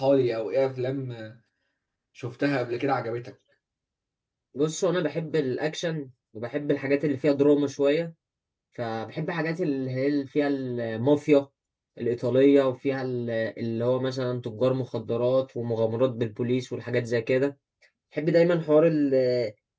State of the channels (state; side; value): identical; both; correlation 1.00